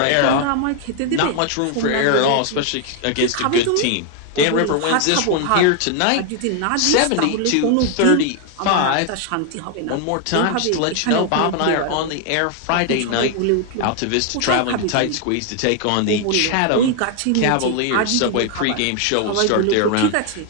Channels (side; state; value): both; different; correlation 0.00